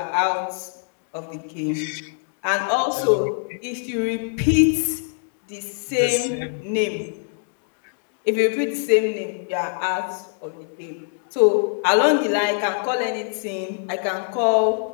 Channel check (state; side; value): silent; right; digital silence